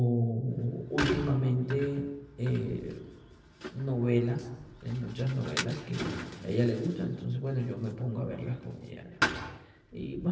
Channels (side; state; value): both; identical; correlation 1.00